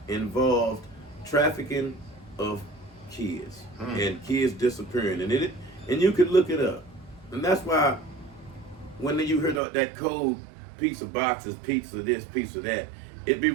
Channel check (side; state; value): left; drops out; at 9.6 s